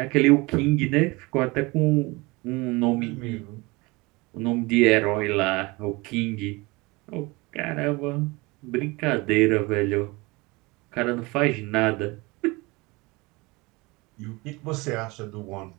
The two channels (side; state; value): left; quieter; 24.3 dB